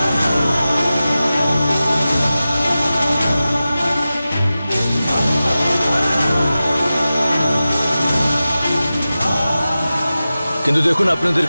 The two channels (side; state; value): both; inverted; correlation -0.94